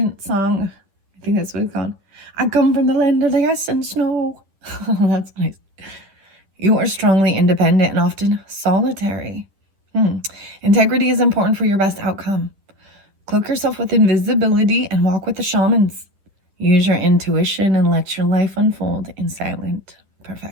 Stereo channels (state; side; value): late; left; 10 ms